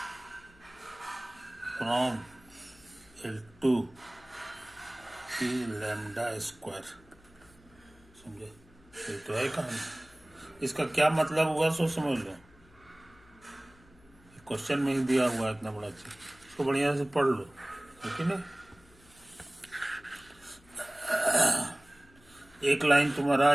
from L2 is lambda square। समझे? ये तो है कहानी। इसका क्या मतलब हुआ सो समझ लो। क्वेश्चन में ही दिया हुआ है इतना बड़ा चीज, इसको बढ़िया से पढ़ लो, ठीक है ना। एक लाइन तुम्हारा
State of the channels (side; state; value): left; noise; hum, 27 dB below the sound